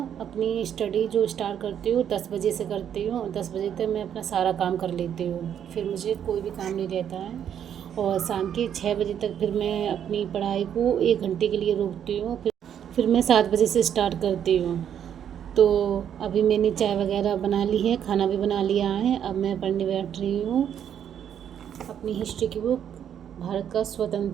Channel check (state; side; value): quieter; left; 9.2 dB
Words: अपनी स्टडी जो स्टार्ट करती हूँ 10 बजे से करती हूँ। 10 बजे तक मैं अपना सारा काम कर लेती हूँ, फिर मुझे कोई भी काम नहीं रहता है। और शाम के 6 बजे तक फिर मैं अपनी पढ़ाई को 1 घंटे के लिए रोकती हूँ। फिर मैं 7 बजे से स्टार्ट करती हूँ। तो अभी मैंने चाय वगैरह बना ली है, खाना भी बना लिया है। अब मैं पढ़ने बैठ रही हूँ अपनी हिस्ट्री की बुक, भारत का